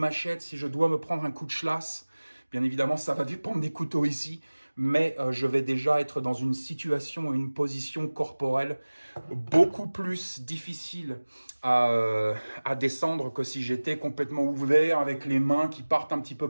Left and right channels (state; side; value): inverted; both; correlation -1.00